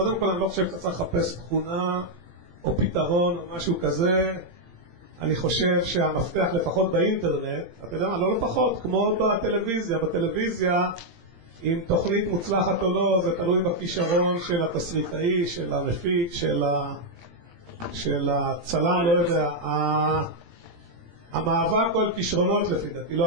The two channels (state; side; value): late; left; 17 ms